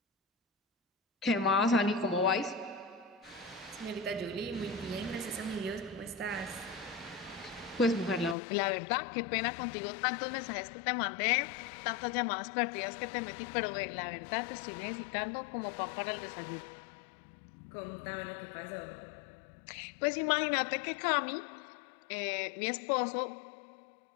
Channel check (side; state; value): right; drops out; at 8.3 s